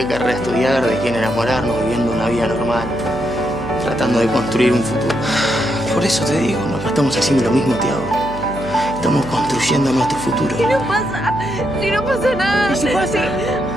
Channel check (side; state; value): right; noise; hum, 12 dB below the sound